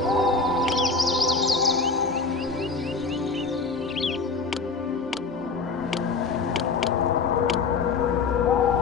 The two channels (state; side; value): quieter; right; 4.5 dB